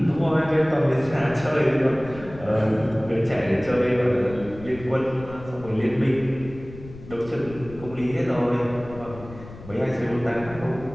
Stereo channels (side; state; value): left; noise; rumble, 16 dB below the sound